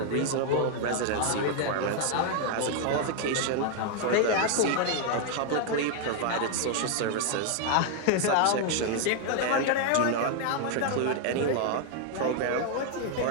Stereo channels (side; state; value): both; different; correlation 0.01